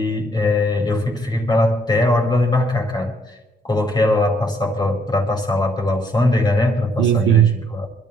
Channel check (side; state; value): both; normal; correlation 0.68